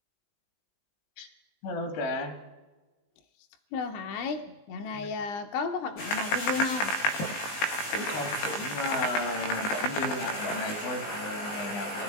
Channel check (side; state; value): right; late; 19 ms